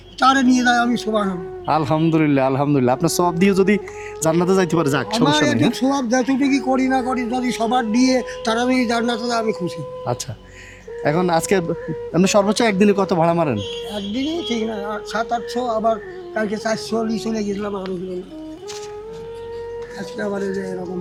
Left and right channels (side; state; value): both; identical; correlation 1.00